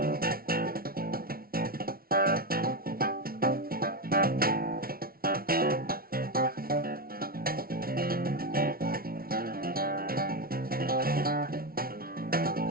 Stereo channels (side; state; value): left; late; 0.43 ms